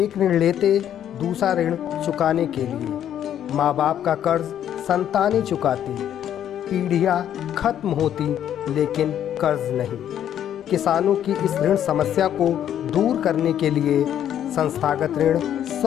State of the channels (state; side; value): quieter; right; 10.3 dB